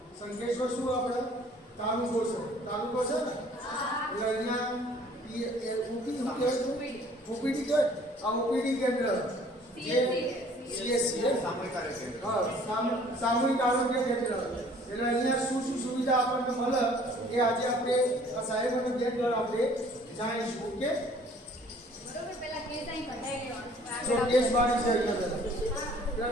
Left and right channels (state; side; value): normal; both; correlation 0.55